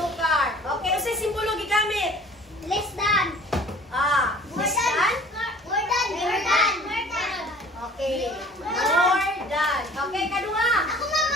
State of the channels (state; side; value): normal; both; correlation 0.49